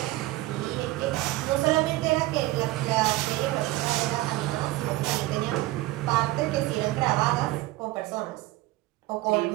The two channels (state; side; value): quieter; left; 18.1 dB